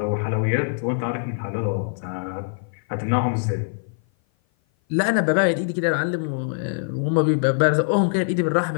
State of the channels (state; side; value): silent; right; 56 dB below the other